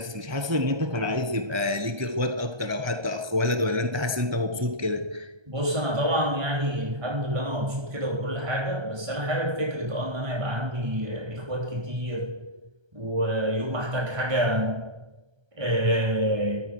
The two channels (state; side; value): late; left; 1.3 ms